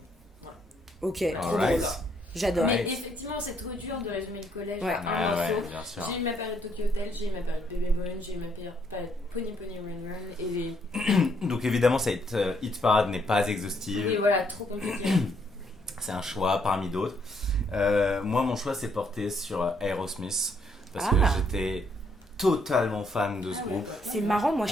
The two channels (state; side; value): normal; both; correlation 0.71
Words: Voilà. Ok, trop Alright. drôle. J'adore. Ouais. Mais effectivement, c'est trop dur de résumer le collège Ouais. à un Ah ouais, morceau. bien sûr. J'ai eu ma période Tokyo Hotel, j'ai eu ma période Baby Moon, j'ai eu ma période Pony Pony Run Run et Donc évidemment, cette hit parade n'est pas exhaustive. et voilà, trop compliqué. C'est un choix parmi d'autres. Moi, mon choix s'est porté sur Aerosmith parce que Ah. j'étais totalement fan de ce groupe. C'est marrant, moi